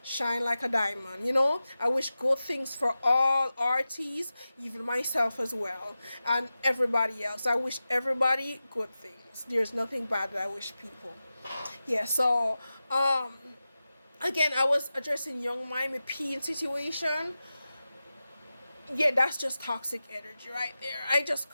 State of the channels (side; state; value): both; inverted; correlation -0.94